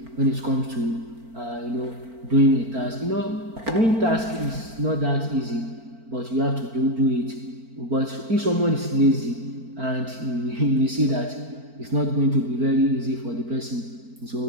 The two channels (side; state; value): left; late; 4.4 ms